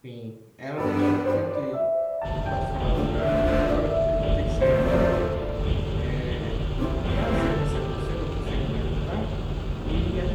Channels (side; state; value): both; identical; correlation 1.00